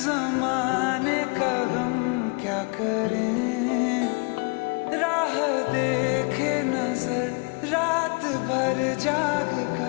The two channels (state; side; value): quieter; right; 32.2 dB